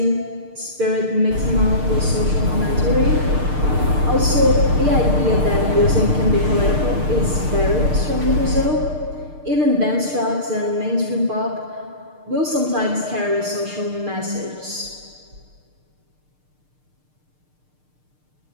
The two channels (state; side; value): late; left; 6.6 ms